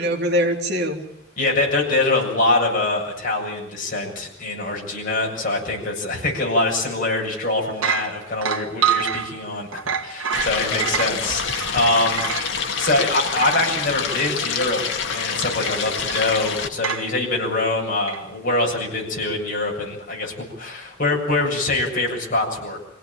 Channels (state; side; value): normal; both; correlation -0.10